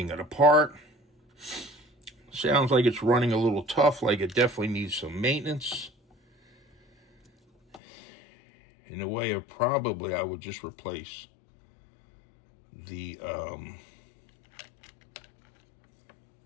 it apart, Sounds like it's running a little tough, like it definitely needs some maintenance. In a way of probably, I would just replace the,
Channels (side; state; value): right; drops out; at 7.8 s